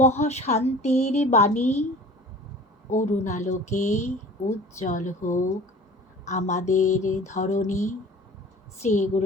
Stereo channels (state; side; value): normal; both; correlation 0.43